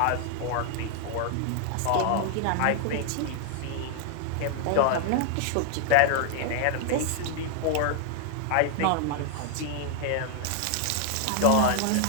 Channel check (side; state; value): both; different; correlation 0.00